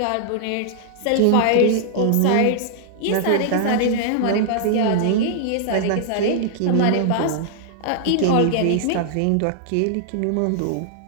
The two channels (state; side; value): different; both; correlation -0.01